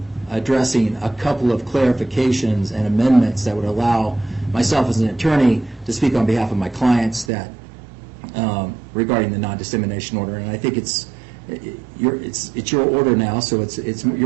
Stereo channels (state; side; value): drops out; left; at 7.3 s